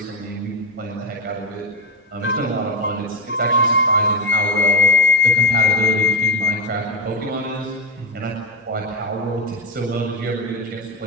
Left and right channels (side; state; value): both; normal; correlation 0.11